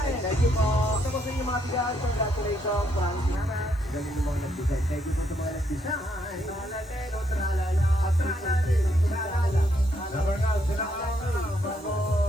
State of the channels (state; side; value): normal; both; correlation 0.74